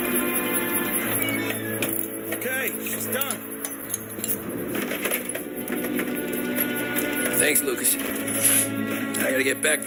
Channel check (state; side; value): identical; both; correlation 1.00